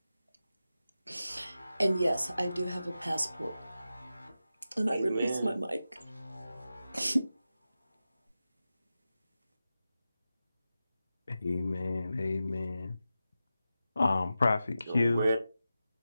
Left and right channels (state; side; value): inverted; both; correlation -0.93